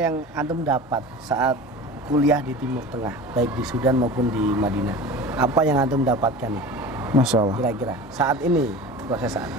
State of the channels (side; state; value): both; normal; correlation 0.35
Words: antum dapat saat kuliah di Timur Tengah, baik di Sudan maupun di Madinah? Apa yang antum dapatkan nih? Masya Allah. Kira-kira saat ini, proses saat